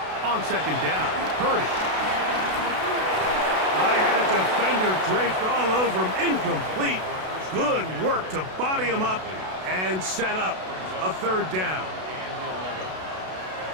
On 2nd down, Purdy. I had a defender draped all over him. Incomplete. Good work to body him up and set up a 3rd down.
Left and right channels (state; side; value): late; left; 32 ms